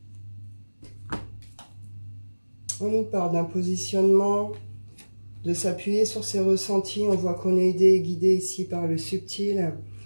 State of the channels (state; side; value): inverted; both; correlation -1.00